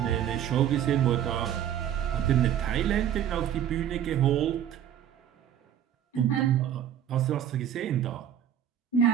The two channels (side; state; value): left; quieter; 10.0 dB